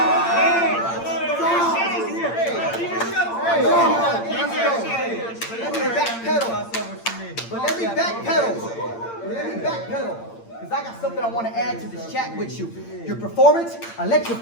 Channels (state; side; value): late; right; 8.8 ms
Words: me backpedal. Because I got something I want to add to this chat with you. Your performance,